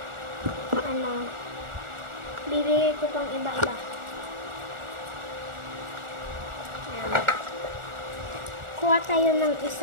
bibigay ko pang iba-iba. Ayan. Kuha tayo ng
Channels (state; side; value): late; left; 1.4 ms